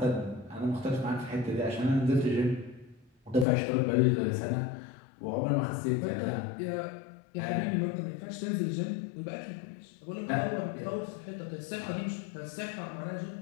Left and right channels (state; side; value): drops out; right; at 3.5 s